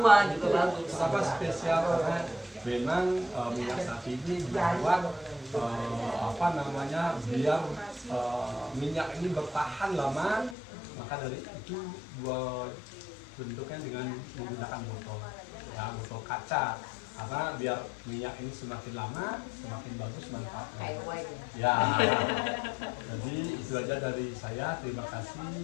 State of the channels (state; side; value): drops out; right; at 10.6 s